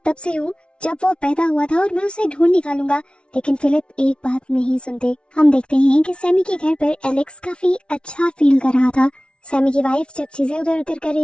तब से हूँ जब वो पैदा हुआ था और मैं उसे ढूंढ निकालूंगा। लेकिन फिलिप एक बात नहीं सुनते। हम देखते हैं कि सैमी के घर पर एलेक्स काफी अच्छा फील कर रहा था। सैमी की वाइफ जब चीजें उधर उधर कर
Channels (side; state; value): right; late; 0.058 ms